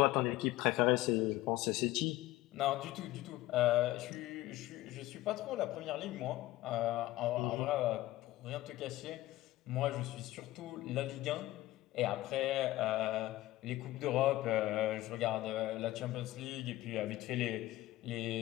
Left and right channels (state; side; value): quieter; right; 16.8 dB